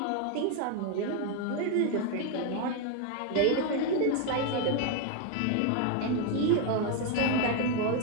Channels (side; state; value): both; different; correlation 0.01